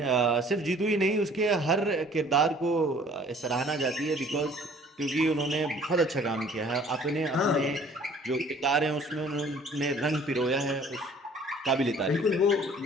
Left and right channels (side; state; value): both; normal; correlation 0.54